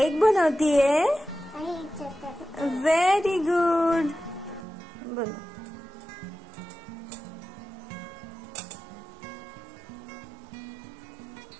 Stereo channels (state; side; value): drops out; left; at 4.7 s